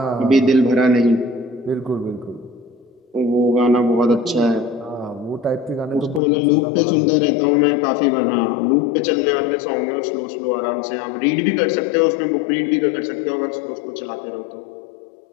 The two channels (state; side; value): drops out; right; at 6.2 s